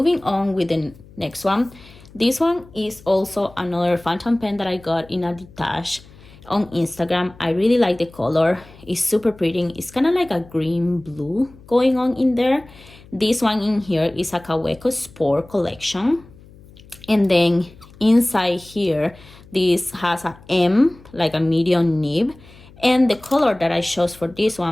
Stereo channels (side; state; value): left; noise; hum, 23 dB below the sound